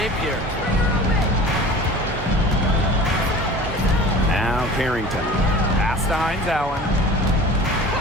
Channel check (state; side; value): normal; both; correlation 0.40